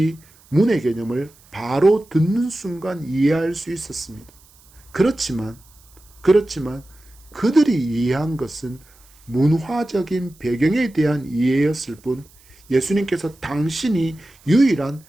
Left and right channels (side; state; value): right; noise; hiss, 28 dB below the sound